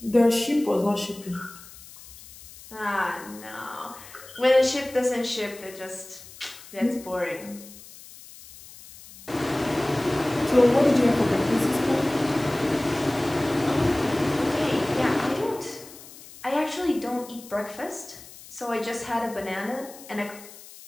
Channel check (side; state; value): left; noise; hiss, 18 dB below the sound